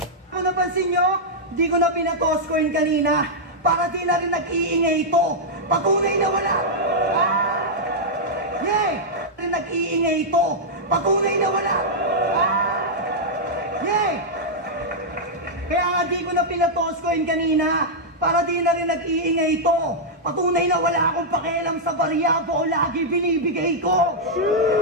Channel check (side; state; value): both; normal; correlation -0.06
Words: Kung napansin nyo, di ko na pinatoss coin kanina. Para di na rin nag-iingay ito. Patunay na wala. Yay! Rin nag-iingay ito. Patunay na wala. Yay! Kaya nga di ko na pinatoss coin kanina. Para di na rin nag-iingay ito. Patunay na wala akong pakialam sa barya o lagi binibigay ko.